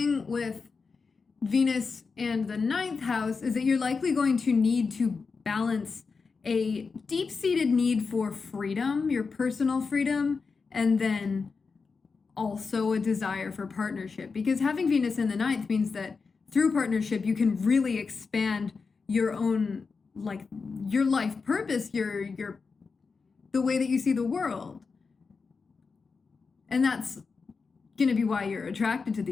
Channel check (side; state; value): right; quieter; 4.8 dB